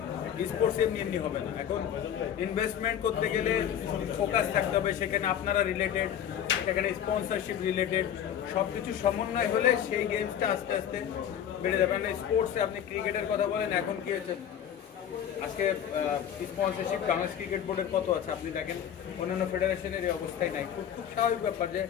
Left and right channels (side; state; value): right; quieter; 9.5 dB